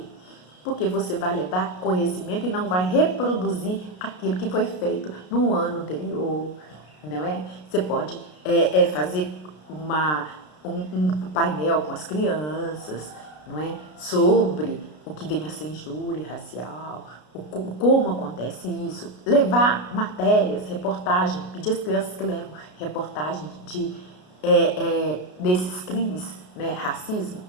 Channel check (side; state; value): right; late; 33 ms